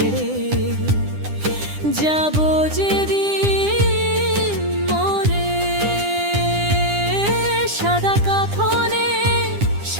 যাব যেদিন মরে, সাদা কাফনে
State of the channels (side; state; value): left; late; 9.9 ms